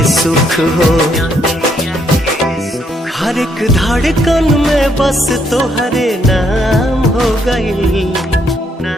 सुख हो हर एक धड़कन में बस तोहरे नाम हो गई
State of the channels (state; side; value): normal; both; correlation 0.72